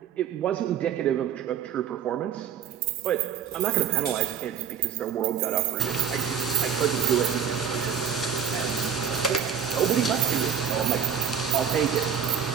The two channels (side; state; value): left; quieter; 7.9 dB